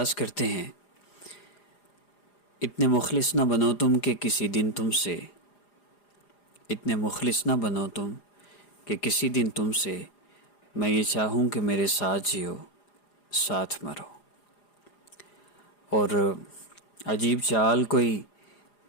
کرتے ہیں۔ اتنے مخلص نہ بنو تم کہ کسی دن تم سے، اتنے مخلص نہ بنو تم کہ کسی دن تم سے میں یہ چاہوں کہ میرے ساتھ جیو ساتھ مرو۔ اور عجیب چال کوئی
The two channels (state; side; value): late; right; 4.9 ms